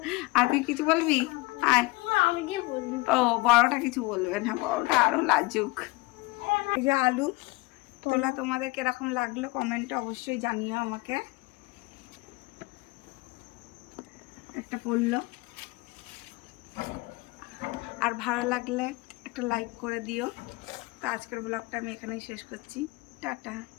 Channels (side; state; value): right; quieter; 23.5 dB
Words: আর তুই কিছু বলবি? আর আমি কি বলবো? ও বড়টা কিছু বলবে না, বড়টা আরো লাজুক। এই যে আলু তোলা তোমাদের কিরকম লাগলো কমেন্টে অবশ্যই জানিও আমাকে। একটা পড়লো, আর ভালো লাগলে একটা লাইক করে দিও। তো আজকের ব্লগটা আমি এখানেই শেষ করছি। টাটা।